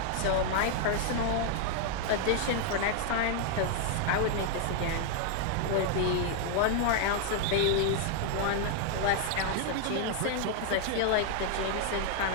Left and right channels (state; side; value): different; both; correlation 0.00